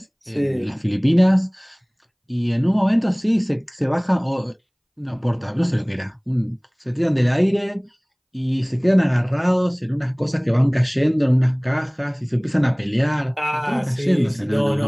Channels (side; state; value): both; identical; correlation 1.00